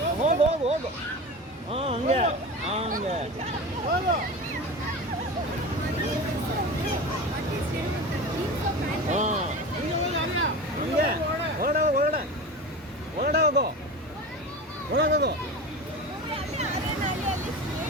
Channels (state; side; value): normal; both; correlation 0.29